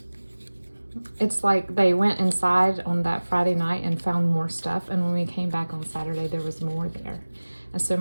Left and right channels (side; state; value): both; inverted; correlation -1.00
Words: It's like they went inside on that Friday night and found more stuff, and when we came back on Saturday, there was more there. And so